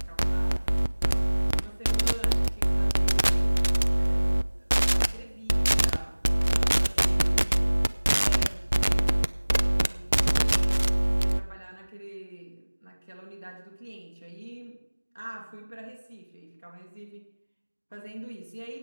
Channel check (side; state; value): both; inverted; correlation -1.00